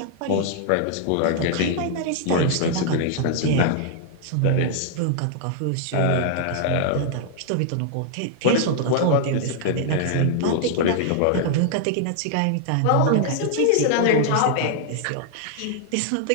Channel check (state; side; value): different; both; correlation -0.01